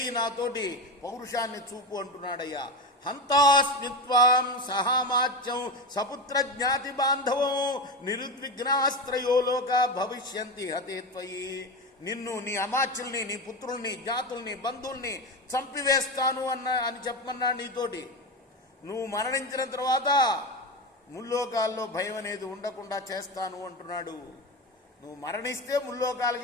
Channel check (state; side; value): normal; both; correlation 0.19